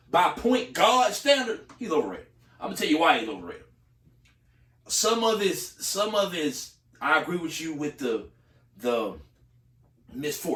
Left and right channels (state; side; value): identical; both; correlation 1.00